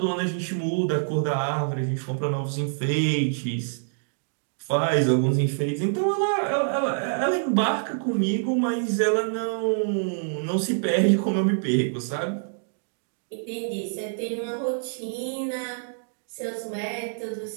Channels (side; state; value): left; silent; digital silence